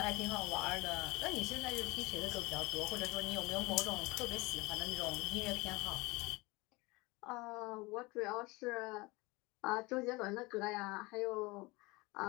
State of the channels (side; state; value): right; quieter; 23.7 dB